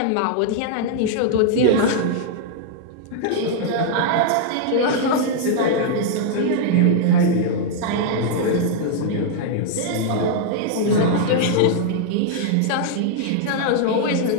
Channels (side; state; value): both; different; correlation -0.01